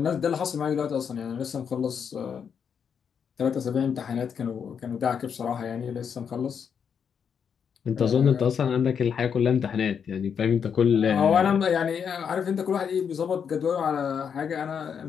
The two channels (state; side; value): quieter; right; 7.2 dB